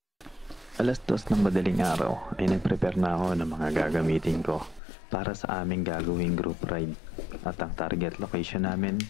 Alas 2 ng madaling araw ay nag-prepare na ako ng mga gagamitin ko para sa aming gagawing group ride. At ang target location namin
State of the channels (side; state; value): right; drops out; at 4.8 s